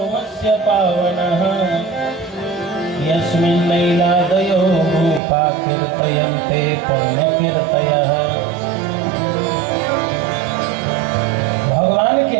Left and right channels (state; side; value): drops out; left; at 5.2 s